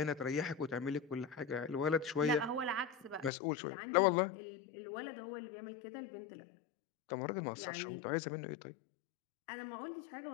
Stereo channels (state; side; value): drops out; right; at 3.3 s